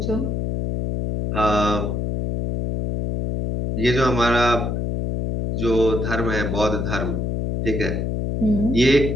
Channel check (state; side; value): noise; left; hum, 1 dB below the sound